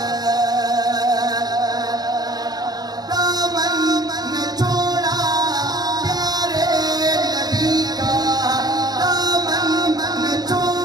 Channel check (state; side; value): late; left; 0.19 ms